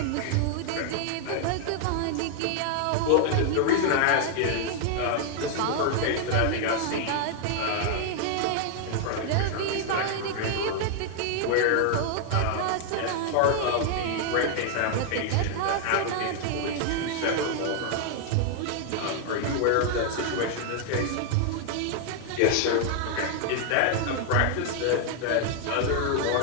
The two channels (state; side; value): different; both; correlation 0.00